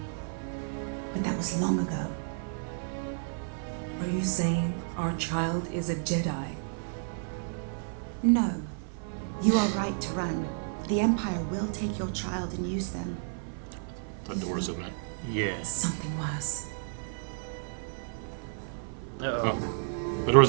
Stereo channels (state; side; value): silent; left; 55 dB below the other